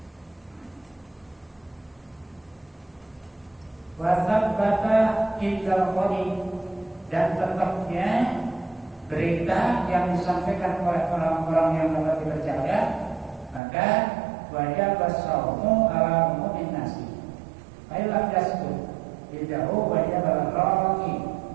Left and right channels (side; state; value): left; drops out; at 13.6 s